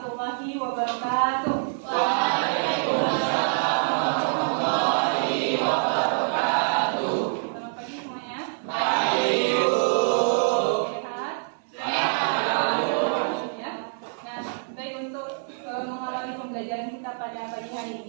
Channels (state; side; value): silent; left; digital silence